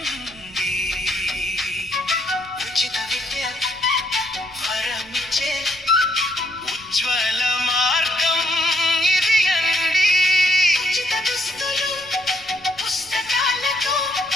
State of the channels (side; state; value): right; noise; rumble, 25 dB below the sound